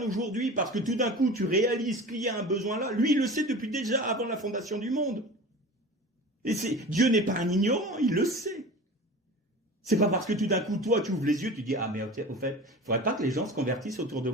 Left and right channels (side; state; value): both; normal; correlation 0.36